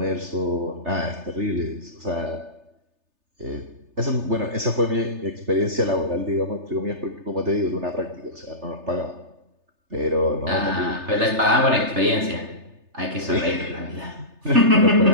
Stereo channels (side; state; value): left; late; 3.3 ms